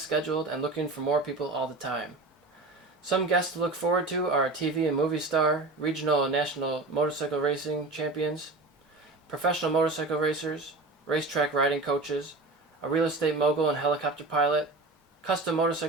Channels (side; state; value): left; quieter; 3.2 dB